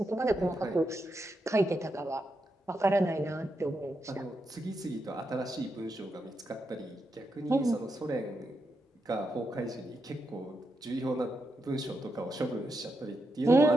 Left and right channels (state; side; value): normal; both; correlation 0.84